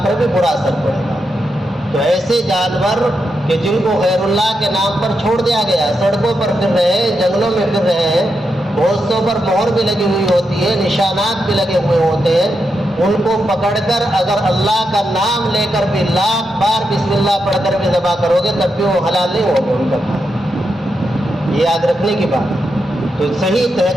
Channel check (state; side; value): normal; both; correlation 0.85